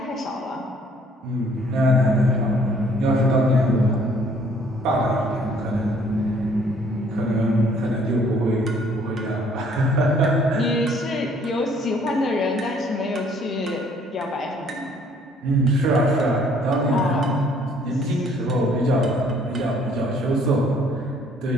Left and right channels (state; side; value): normal; both; correlation 0.61